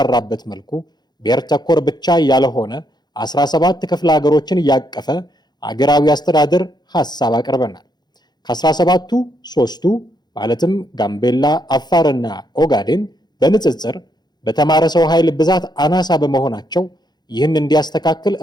መልኩ ብሔር ተኮር ብቻ ያልሆነ 17 ክፍለ ሀገሮችን ያቀፈ አገራዊ አስተዳደር ሐሳብ አቅርበናል። ከ17ቱ 3ቱ ማለትም ጋምቤላ፣ አፋርና ኦጋዴን በንጽጽር በተማረ ሰው ኃይል ብዛት አናሳ በመሆናቸው ይህን እንዲያስተካክል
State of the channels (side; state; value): right; late; 0.20 ms